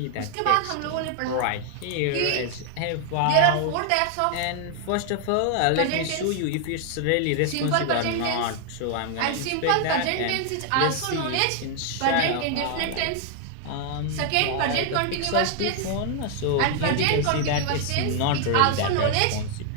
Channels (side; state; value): both; different; correlation 0.00